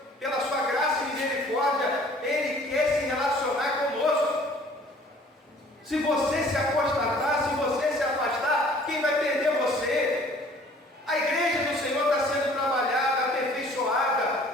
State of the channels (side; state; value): both; normal; correlation 0.53